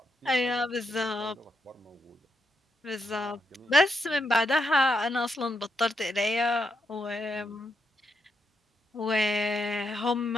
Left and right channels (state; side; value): normal; both; correlation 0.81